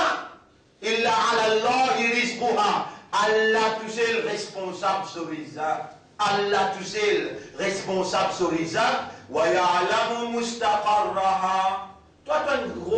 إِلَّا عَلَى اللَّهِ رِزْقُهَا. Allah tout seul responsable sur les actes. Allah tout seul responsable sur les actes. وَيَعْلَمُ مُسْتَقَرَّهَا. Toi, tu es un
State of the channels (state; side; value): identical; both; correlation 1.00